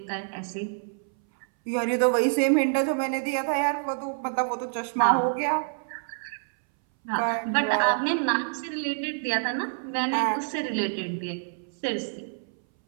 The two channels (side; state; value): left; silent; 60 dB below the other